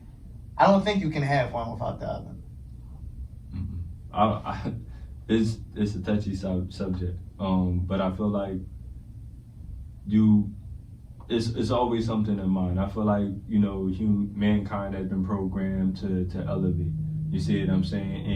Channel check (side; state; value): both; identical; correlation 1.00